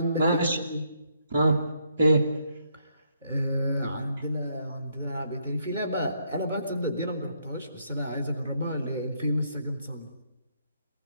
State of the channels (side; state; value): both; inverted; correlation -0.73